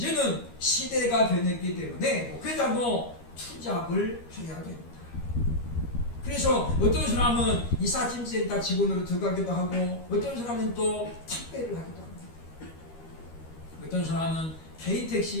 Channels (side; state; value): right; late; 13 ms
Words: 시대가 변했기 때문에 목회자도 투잡을 해야 됩니다. 그래서 어떤 사람은 이삿짐센터 직원으로 들어가기도 하고 어떤 사람은 또 택배를 하기도 합니다. 어떤 사람은 개인